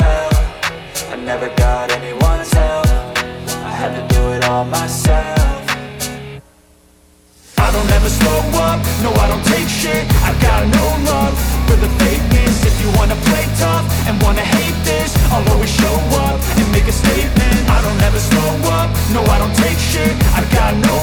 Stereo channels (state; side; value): identical; both; correlation 1.00